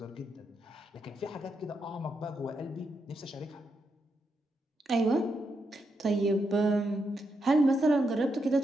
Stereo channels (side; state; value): both; normal; correlation 0.83